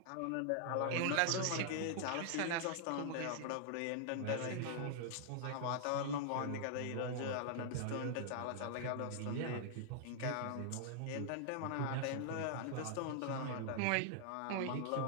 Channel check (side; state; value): both; different; correlation -0.01